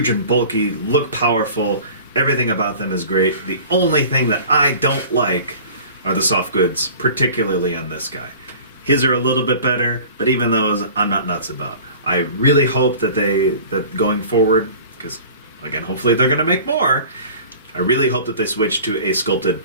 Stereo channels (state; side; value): inverted; both; correlation -0.43